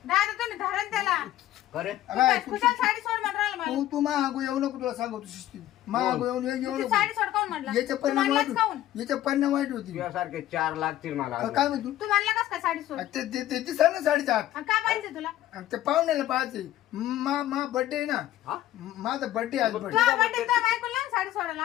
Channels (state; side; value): quieter; right; 13.6 dB